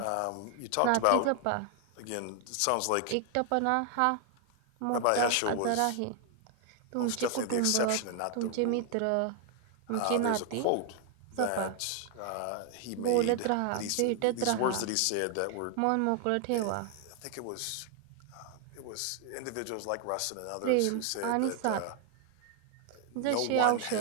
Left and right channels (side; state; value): both; different; correlation 0.00